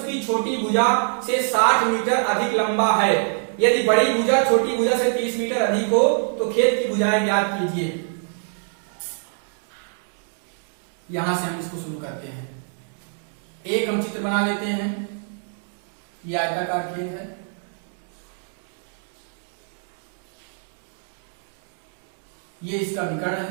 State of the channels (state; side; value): silent; left; 62 dB below the other